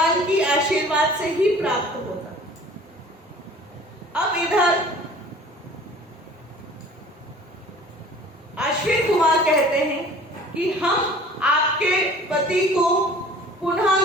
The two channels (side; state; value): both; normal; correlation 0.47